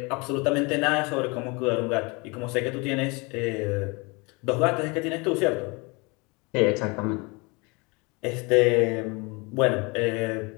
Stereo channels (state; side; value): quieter; right; 28.1 dB